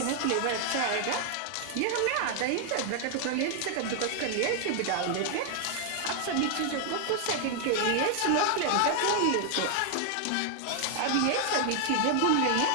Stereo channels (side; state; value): both; different; correlation 0.00